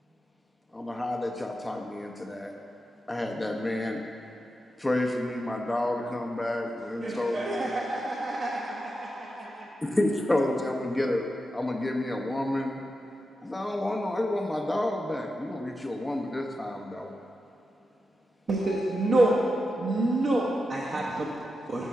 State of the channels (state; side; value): normal; both; correlation 0.89